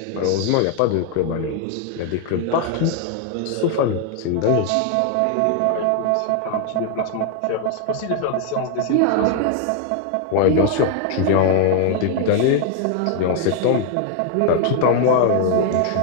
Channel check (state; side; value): different; both; correlation 0.00